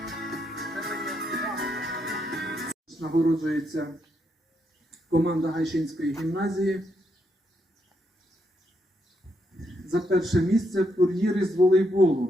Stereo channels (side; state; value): both; normal; correlation 0.78